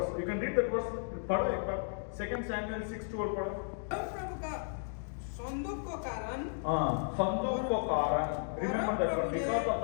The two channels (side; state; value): right; silent; digital silence